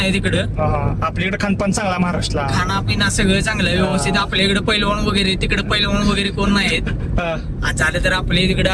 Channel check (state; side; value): identical; both; correlation 1.00